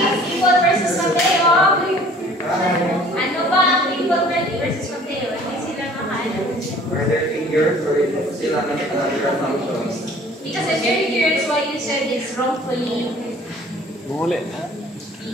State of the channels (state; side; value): normal; both; correlation 0.51